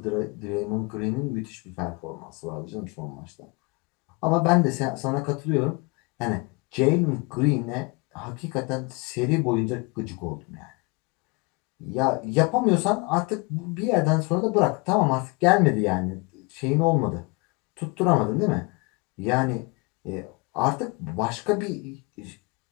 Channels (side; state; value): right; quieter; 29.0 dB